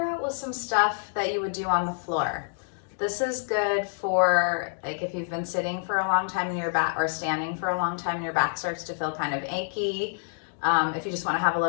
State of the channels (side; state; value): right; silent; digital silence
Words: out with some stuff that you would do on the floor. This is good for, like, if you've been sitting for a long time in your back or standing for a long time and your back starts to feel kind of achy. If you just want to have a